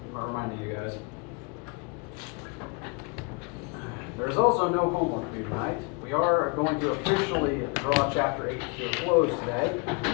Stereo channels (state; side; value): quieter; right; 32.0 dB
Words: guys. There's also no homework due tonight. We are going to officially draw Chapter 8 to a close today,